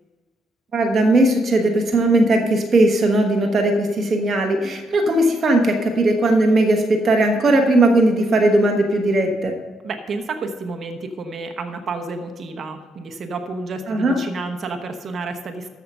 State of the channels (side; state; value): both; normal; correlation 0.77